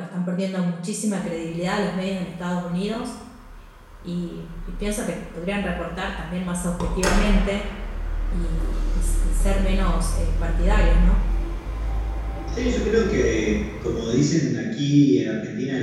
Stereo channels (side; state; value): both; identical; correlation 1.00